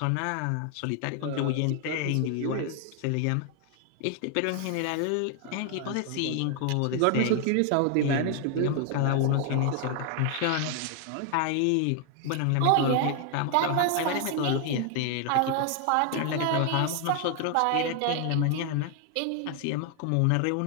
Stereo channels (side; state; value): both; different; correlation 0.00